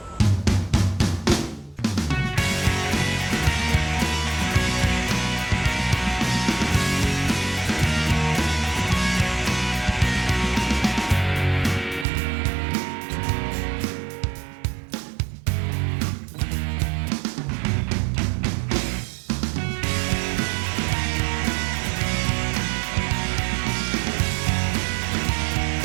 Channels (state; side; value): drops out; left; at 12.1 s